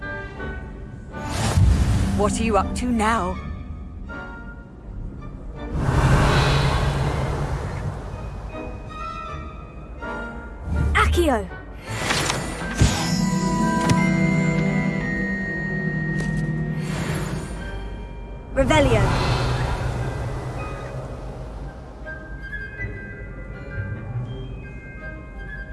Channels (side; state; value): both; identical; correlation 1.00